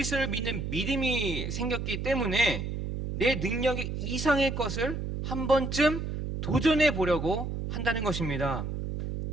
믿는 믿음이 생겼기 때문에 내 능력의 이상의 것을 한 번쯤 도전해 보려고 한다는 것입니다.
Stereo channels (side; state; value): right; noise; hum, 4 dB below the sound